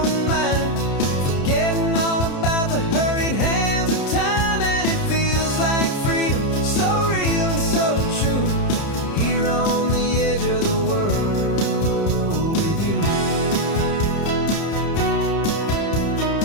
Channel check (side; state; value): right; late; 30 ms